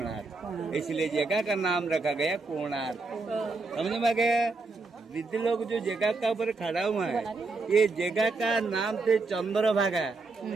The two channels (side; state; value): left; quieter; 3.8 dB